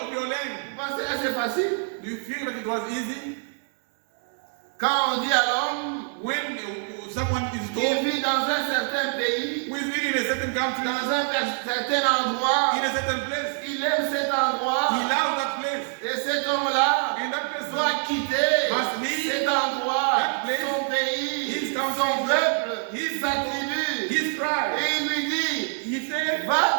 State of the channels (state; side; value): silent; left; 56 dB below the other